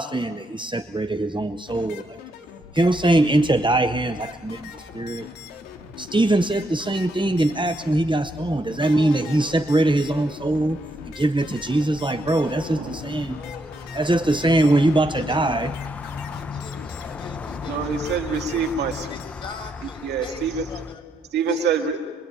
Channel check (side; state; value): both; normal; correlation 0.77